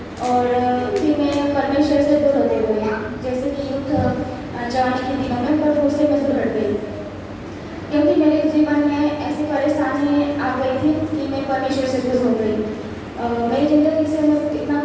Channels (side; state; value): both; identical; correlation 1.00